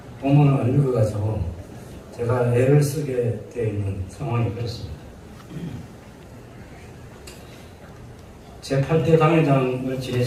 본문을 안 읽어가지고 제가 애를 쓰게 되어 있는 상황이 그렇습니다. 제8대 당회장을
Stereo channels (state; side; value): identical; both; correlation 1.00